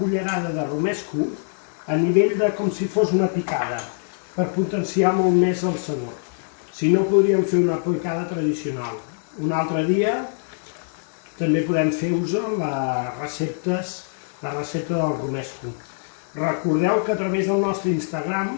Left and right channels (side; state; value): right; silent; digital silence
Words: de romesco a nivell de com si fos una picada, per potenciar molt més el sabor. Si no, podríem fer una picada tradicional. Un altre dia també podem fer-vos la recepta del romesco. Recordeu que a través del nostre Instagram